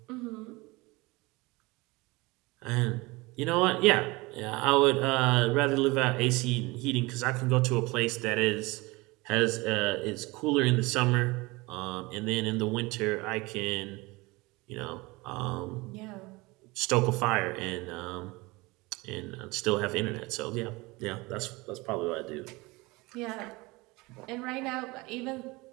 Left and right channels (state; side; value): quieter; left; 23.5 dB